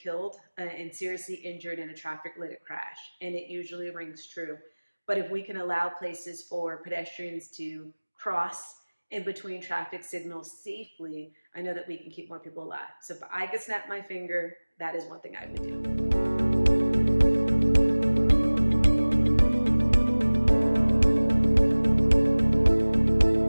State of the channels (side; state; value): both; inverted; correlation -1.00